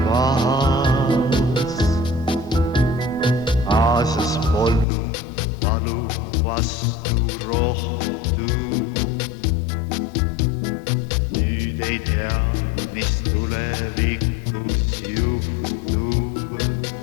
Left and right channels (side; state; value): right; drops out; at 4.9 s